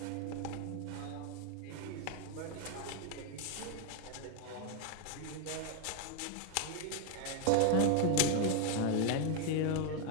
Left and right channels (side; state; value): both; different; correlation 0.01